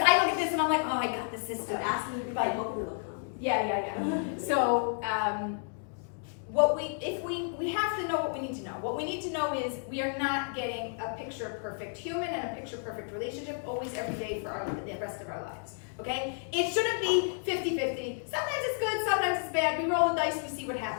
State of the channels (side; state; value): right; silent; 57 dB below the other